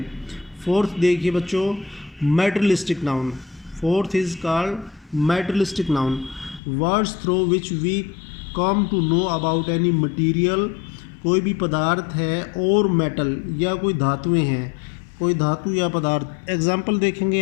फोर्थ देखिए बच्चों, materialistic noun. Fourth is called materialistic noun, words through which we come to know about any material. कोई भी पदार्थ है और मेटल या कोई धातुएं हैं, कोई धातु या पदार्थ। एग्जाम्पल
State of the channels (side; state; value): right; drops out; at 6.6 s